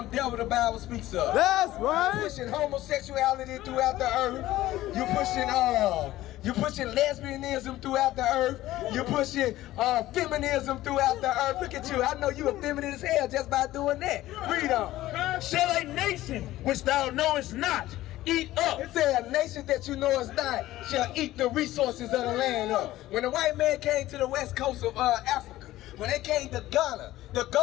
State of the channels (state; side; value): quieter; right; 15.6 dB